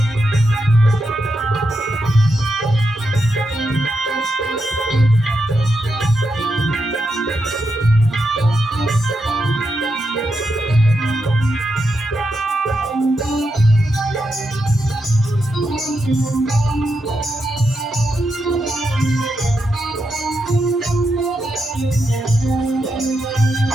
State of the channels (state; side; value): normal; both; correlation 0.84